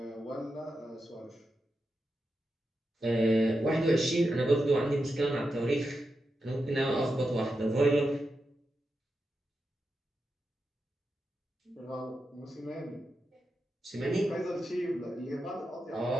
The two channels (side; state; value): both; normal; correlation 0.88